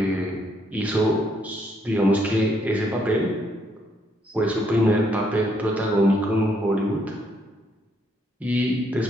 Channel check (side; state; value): both; normal; correlation 0.72